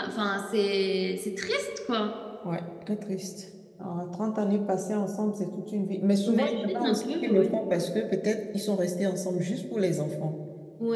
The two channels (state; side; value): identical; both; correlation 1.00